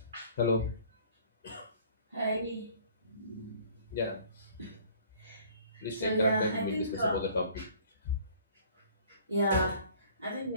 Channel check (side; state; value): both; inverted; correlation -0.54